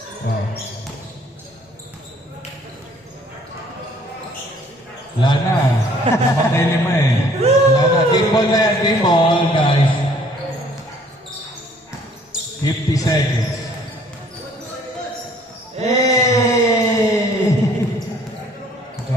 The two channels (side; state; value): both; normal; correlation 0.58